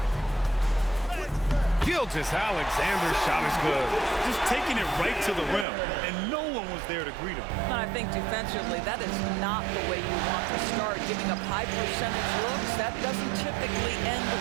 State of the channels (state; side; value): drops out; left; at 5.7 s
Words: Gilgeous-Alexander's shot is good. Just taking it right to the rim, and no one was there to greet him. And I think defensively, that is not the way you want to start. Giving up high percentage looks, that doesn't typically end